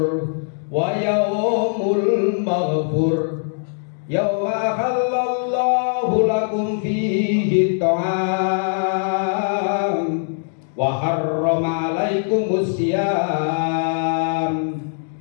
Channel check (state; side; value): silent; right; digital silence